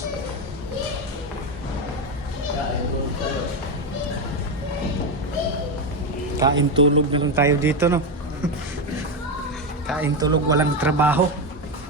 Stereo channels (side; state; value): both; normal; correlation 0.11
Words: Kain tulog na lang tayo dito, no? Kain tulog, walang trabaho.